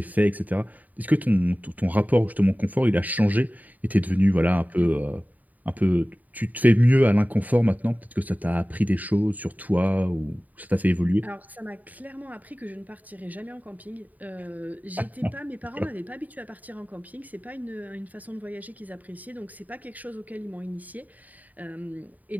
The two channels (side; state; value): left; late; 0.077 ms